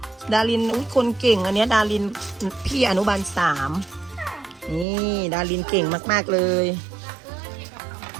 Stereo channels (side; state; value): left; drops out; at 4.9 s